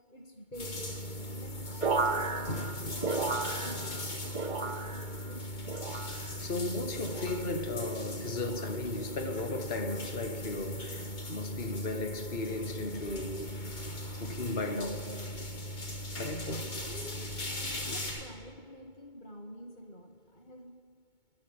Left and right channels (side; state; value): right; late; 2.2 ms